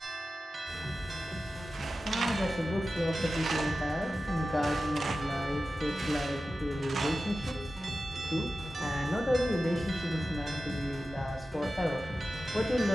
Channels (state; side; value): normal; both; correlation 0.94